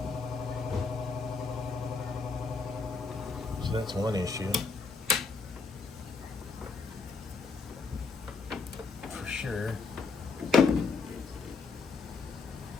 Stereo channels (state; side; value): quieter; right; 4.6 dB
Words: So that's one issue. For sure.